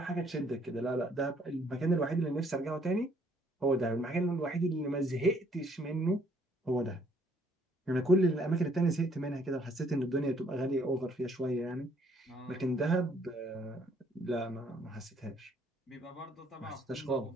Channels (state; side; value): normal; both; correlation 0.65